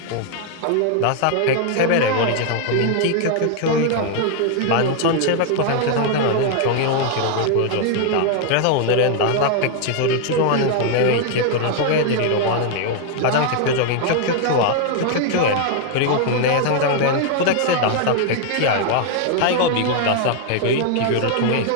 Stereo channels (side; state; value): both; different; correlation 0.00